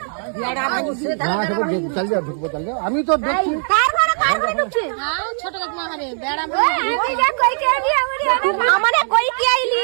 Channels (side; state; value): left; silent; 62 dB below the other